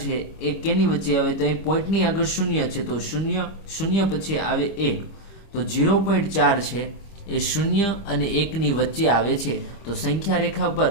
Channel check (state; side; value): late; right; 25 ms